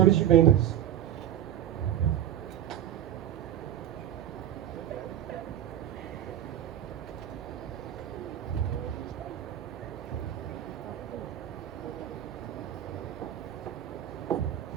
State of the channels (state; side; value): quieter; left; 11.1 dB